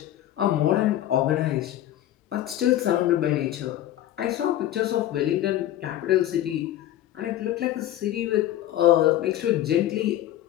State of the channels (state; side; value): quieter; right; 13.0 dB